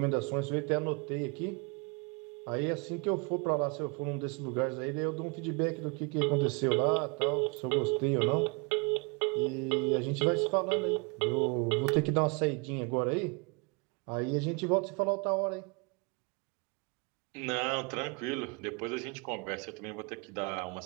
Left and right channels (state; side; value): quieter; left; 30.5 dB